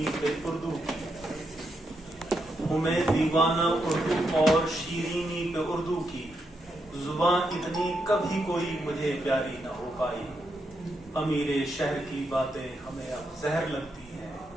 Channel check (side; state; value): both; normal; correlation 0.82